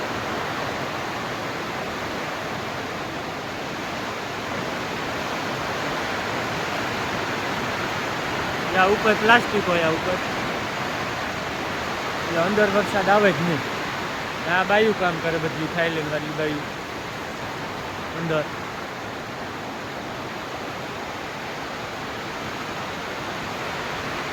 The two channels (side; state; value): both; identical; correlation 1.00